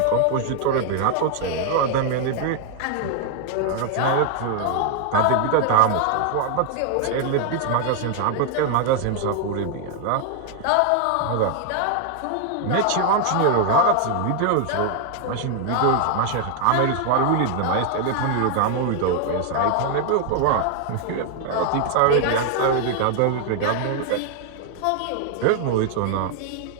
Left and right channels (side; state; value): both; different; correlation 0.00